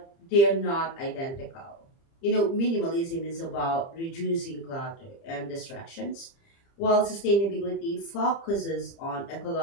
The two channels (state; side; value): late; right; 30 ms